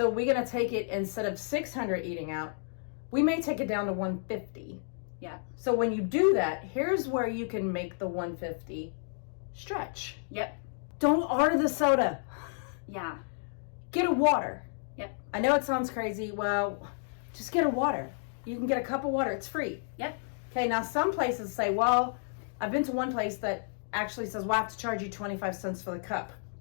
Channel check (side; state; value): right; silent; digital silence